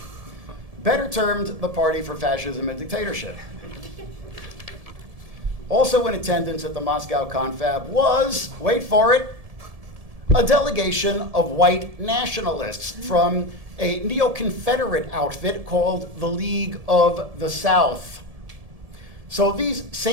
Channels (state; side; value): late; left; 1.7 ms